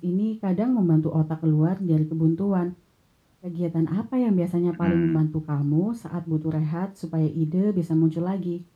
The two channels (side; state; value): both; identical; correlation 1.00